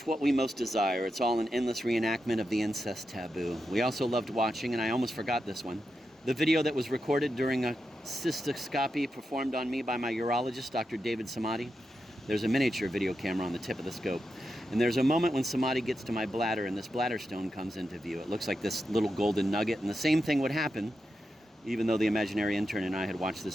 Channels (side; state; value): both; normal; correlation 0.88